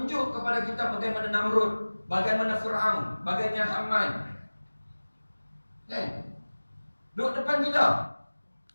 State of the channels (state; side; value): inverted; both; correlation -1.00